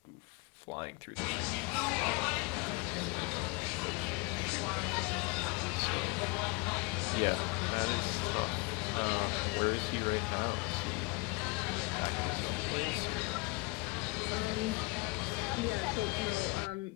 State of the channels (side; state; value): right; quieter; 28.0 dB